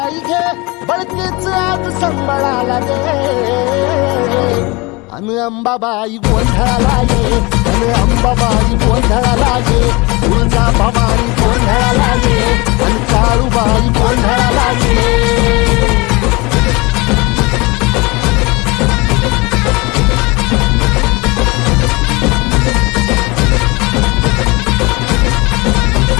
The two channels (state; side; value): quieter; right; 24.9 dB